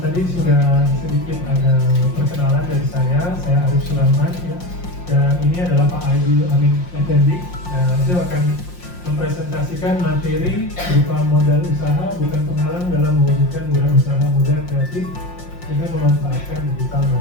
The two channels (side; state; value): right; late; 5.6 ms